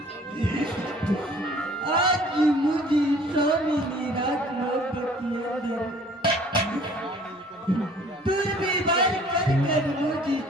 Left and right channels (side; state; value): both; normal; correlation 0.53